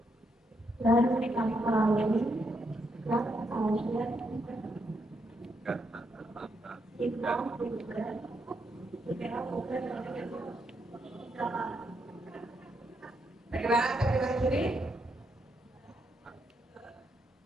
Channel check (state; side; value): normal; both; correlation 0.79